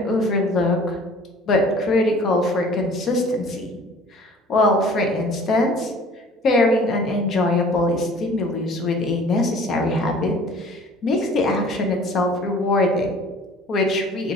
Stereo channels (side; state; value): both; normal; correlation 0.49